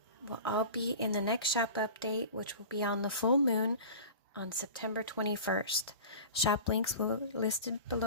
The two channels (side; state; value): both; inverted; correlation -0.37